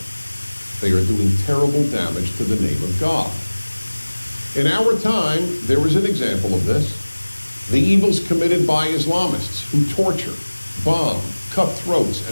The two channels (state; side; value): inverted; both; correlation -1.00